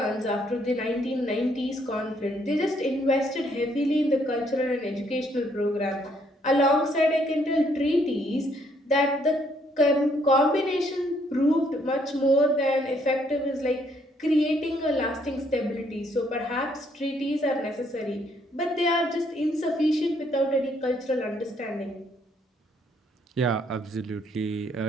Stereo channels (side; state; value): both; normal; correlation 0.69